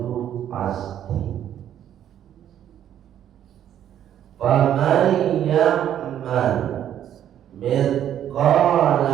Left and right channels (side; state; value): left; quieter; 10.5 dB